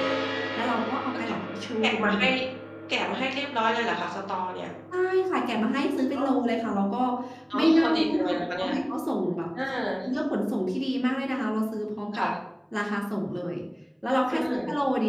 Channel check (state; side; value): identical; both; correlation 1.00